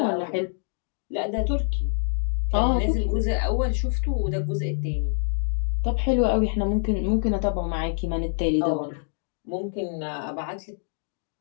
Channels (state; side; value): silent; right; digital silence